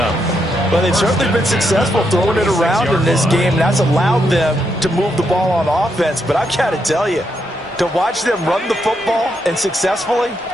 Well, they've certainly been successful throwing it around in this game. That's allowed them to move the ball on offense. But I've got to tell you, to watch them run the football and successfully,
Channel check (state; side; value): normal; both; correlation 0.80